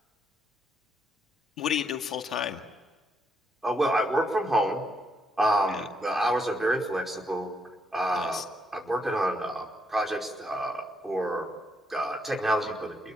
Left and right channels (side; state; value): both; normal; correlation 0.76